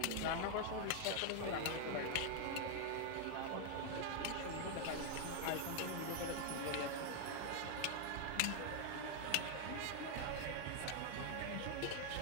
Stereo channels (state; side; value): different; both; correlation 0.00